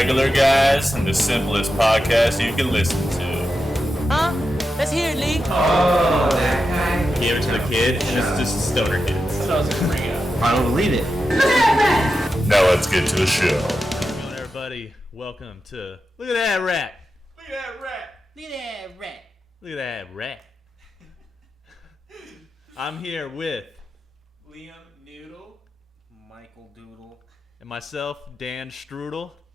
guys and the simplest podcast you can listen to. Huh? Let's hear it, Lee. Oh, that guy. Gave it to the kid, and it's just stoner kids. That's what I was gonna bring up. I don't believe it. Now let's get to the show. How's it going, everybody? Welcome to Look at That Rat. Look at that rat. Look at that rat. Look at that rat. I'm here with Liam Noodle. Michael Doodle. and myself, Dan Strudel.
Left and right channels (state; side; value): normal; both; correlation 0.90